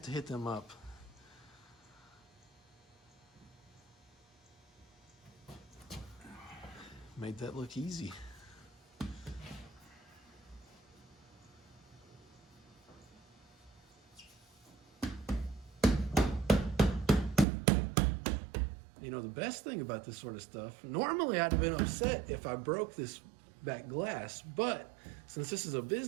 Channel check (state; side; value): drops out; left; at 17.4 s